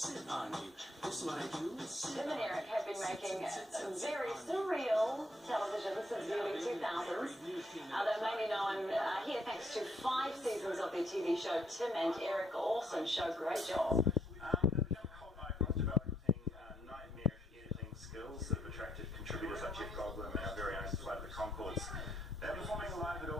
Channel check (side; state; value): both; normal; correlation 0.71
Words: on you. This is what I do. Tim and Eric have been making very surreal television since the early 2000s. They're mainly known here thanks to 5 seasons of their TV show Tim and Eric. Awesome show, great job. They've become cult icons, developing nightmarish editing skills that have attracted contributors like Jeff Goldblum and our very own Flight of the Conchords. They're performing live at